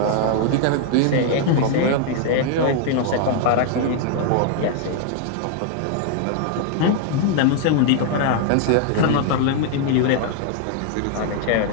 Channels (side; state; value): both; different; correlation 0.00